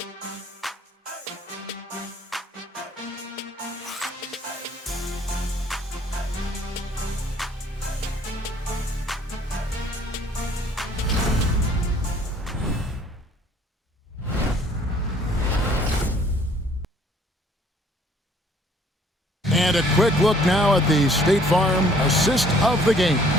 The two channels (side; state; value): both; normal; correlation 0.59